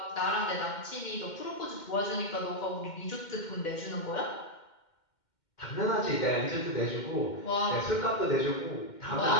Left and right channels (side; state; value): right; late; 2.1 ms